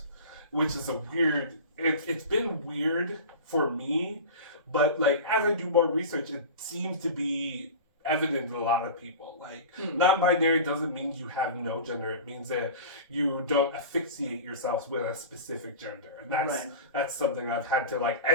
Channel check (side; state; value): both; inverted; correlation -0.33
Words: which is a weird. It's been weird for me, but like as I do more research, it seems to be evident in a lot of people. Like non-binary doesn't mean you have no gender. It means that you don't asphyxiate yourselves with a specific gender, and that's something I've had to like